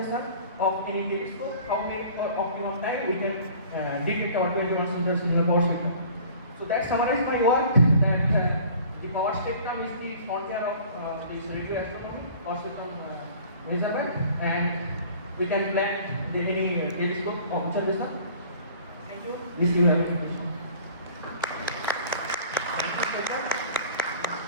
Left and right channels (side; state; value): both; inverted; correlation -0.48